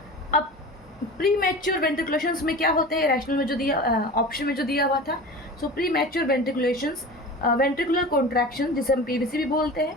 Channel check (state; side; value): normal; both; correlation 0.34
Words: अब प्री मैच्योर वेंट्रिकुलेशंस में क्या होते हैं, रैशनल में जो दिया ऑप्शन में जो दिया हुआ था। So premature ventriculations ventricular contraction जिसे हम पीवीसी भी बोलते हैं,